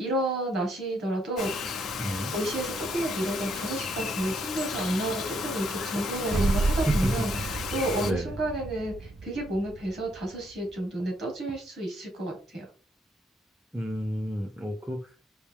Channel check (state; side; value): normal; both; correlation 0.72